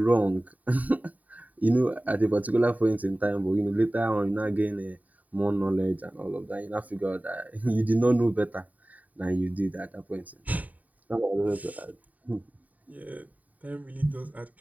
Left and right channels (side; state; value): left; late; 0.074 ms